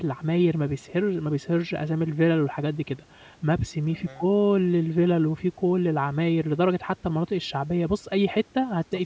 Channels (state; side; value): identical; both; correlation 1.00